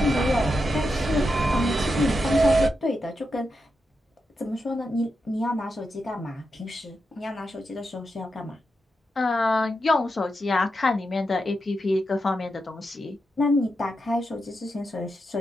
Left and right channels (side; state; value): both; normal; correlation 0.87